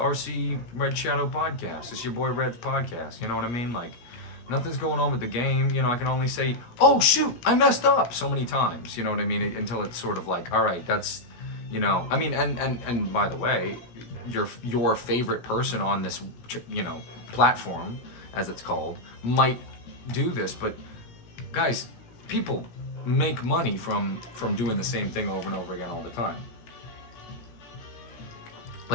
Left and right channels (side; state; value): right; late; 17 ms